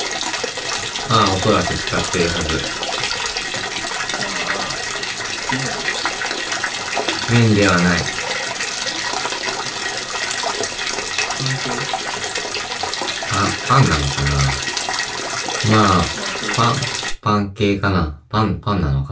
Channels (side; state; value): both; identical; correlation 1.00